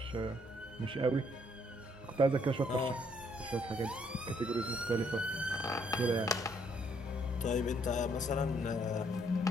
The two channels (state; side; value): normal; both; correlation 0.68